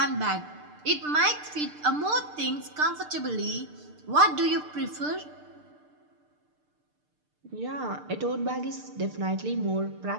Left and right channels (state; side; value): late; left; 6.7 ms